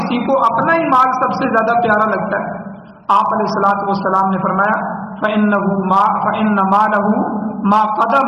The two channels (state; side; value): identical; both; correlation 1.00